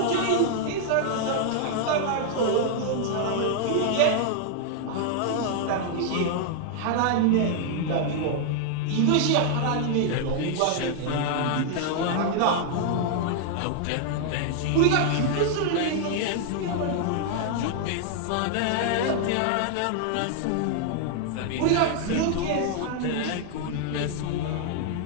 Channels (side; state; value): both; different; correlation 0.00